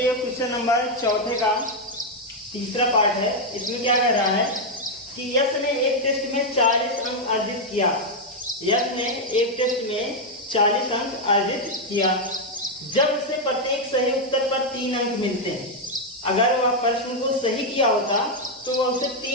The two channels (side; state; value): both; normal; correlation 0.01